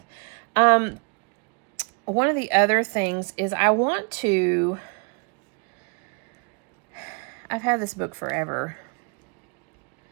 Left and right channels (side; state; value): left; quieter; 35.6 dB